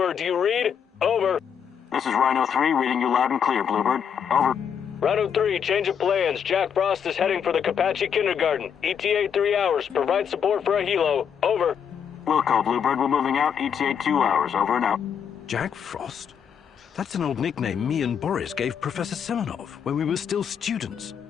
Do you read? Over. This is Rhino 3, reading you loud and clear, Bluebird. Over. Rhino 3, change of plans. Jack Frost is heading for the Kapachi Kindergarten. ETA 3 hours. Provide support for a helo. Over. Wilco, Bluebird, we're moving out. ETA 2 hours. Over and out. Jack Frost? That's an old nickname me and Boris gave Professor Semenov when we were still students.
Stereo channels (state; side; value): quieter; right; 7.8 dB